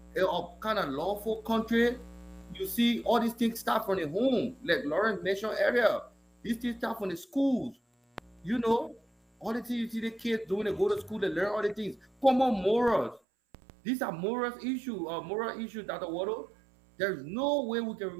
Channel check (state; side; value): drops out; left; at 13.2 s